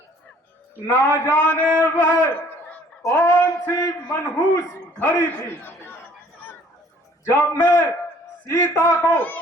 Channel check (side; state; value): both; normal; correlation 0.57